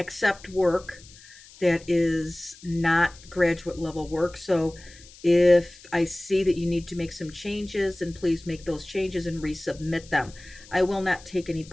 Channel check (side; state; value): left; noise; hiss, 22 dB below the sound